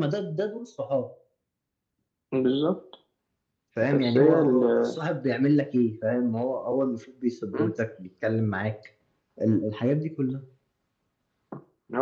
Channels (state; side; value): identical; both; correlation 1.00